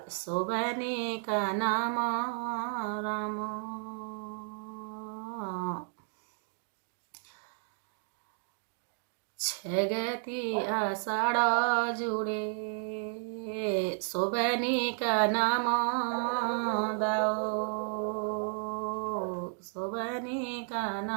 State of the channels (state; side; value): silent; left; 56 dB below the other